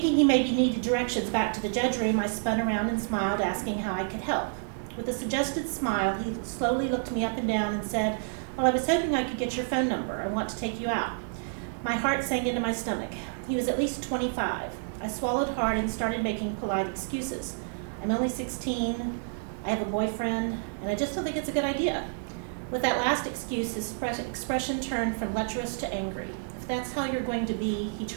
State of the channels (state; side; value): silent; left; digital silence